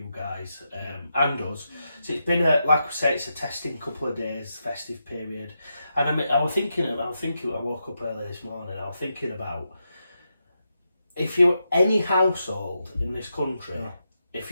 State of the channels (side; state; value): both; inverted; correlation -0.85